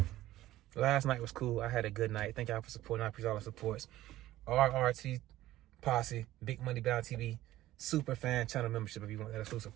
Last night was cool. I had a good night. Thank y'all for supporting. I appreciate all the supports. RRT Posse, Big Money Bound TV, super fan channel membership if you want that exclusive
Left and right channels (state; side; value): quieter; left; 15.2 dB